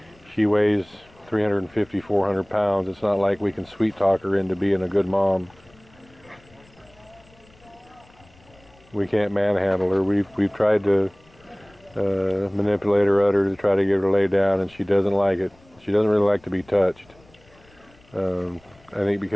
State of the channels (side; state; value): left; noise; rumble, 29 dB below the sound